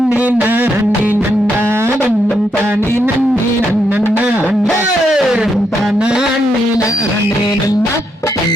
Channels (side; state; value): both; normal; correlation 0.79